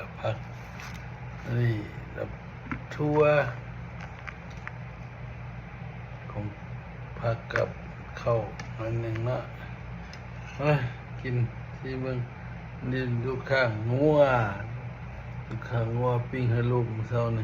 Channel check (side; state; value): both; identical; correlation 1.00